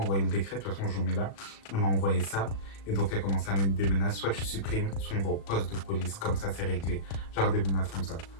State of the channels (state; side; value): late; right; 37 ms